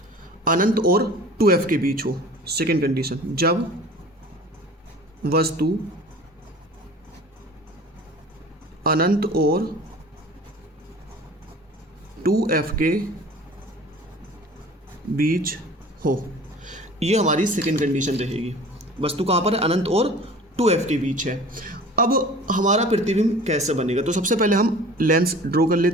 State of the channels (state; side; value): normal; both; correlation 0.43